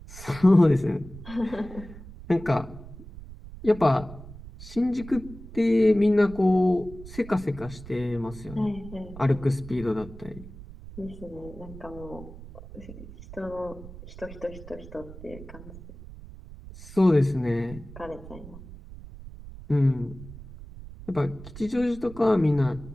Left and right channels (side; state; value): right; noise; rumble, 15 dB below the sound